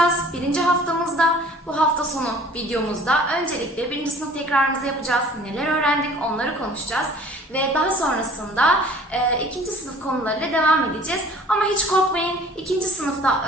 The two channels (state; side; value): normal; both; correlation 0.51